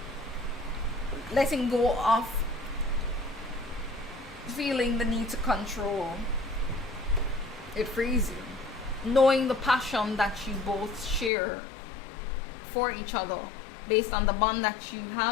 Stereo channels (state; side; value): drops out; right; at 11.3 s